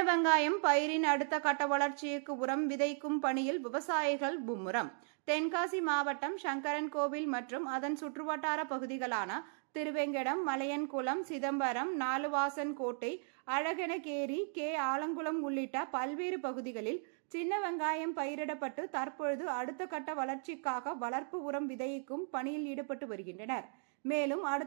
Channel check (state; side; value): silent; left; 53 dB below the other